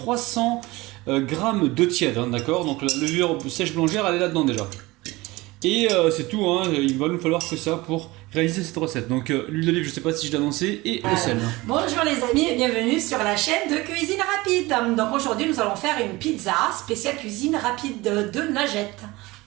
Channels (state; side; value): quieter; left; 21.1 dB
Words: g d'eau tiède, hein, d'accord. Donc la levure sèche boulangère, elle est là-dedans déjà. Et c'est tout, hein, il va nous falloir que ça pour réaliser cette recette. Donc l'huile d'olive, je sais pas si je l'ai annoncé, et le sel. Bonjour les amis et bienvenue sur la chaîne de cuisine rapide. Donc aujourd'hui nous allons faire une pizza spéciale cuisine rapide de Najette.